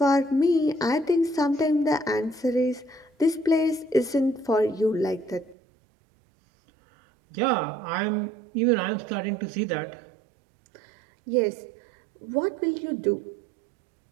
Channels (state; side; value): drops out; left; at 5.6 s